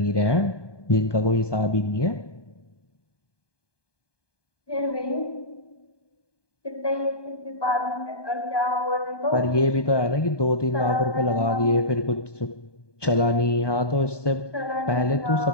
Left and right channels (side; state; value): right; late; 1.2 ms